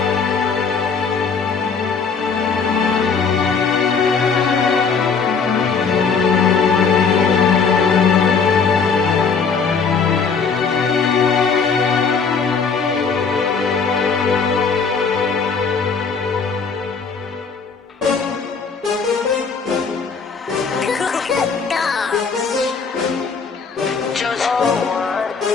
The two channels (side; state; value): right; quieter; 5.4 dB